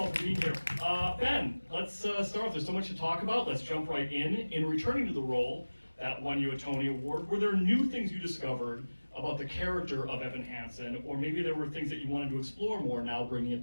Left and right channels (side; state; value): both; inverted; correlation -1.00